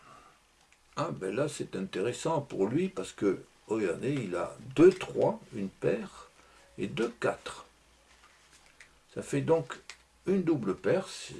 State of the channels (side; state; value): both; identical; correlation 1.00